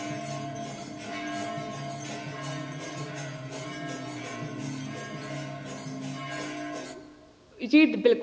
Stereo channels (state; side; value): identical; both; correlation 1.00